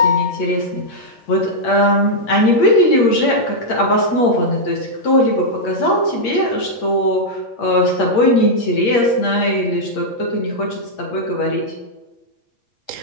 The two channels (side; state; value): right; late; 8.6 ms